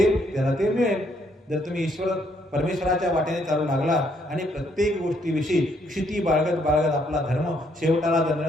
त्याला ते मिळेल. जर तुम्ही परमेश्वराच्या वाटेने चालू लागला आणि प्रत्येक गोष्टीविषयी क्षिती बाळगत आपला धर्म शेवटाला धरला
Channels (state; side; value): normal; both; correlation 0.70